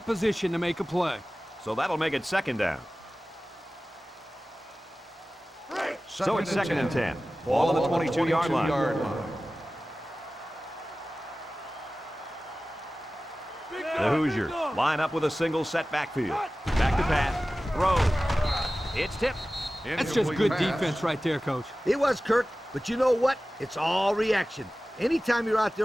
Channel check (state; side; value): normal; both; correlation 0.96